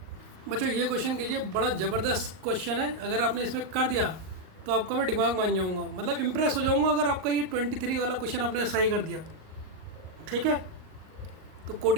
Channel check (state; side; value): late; left; 38 ms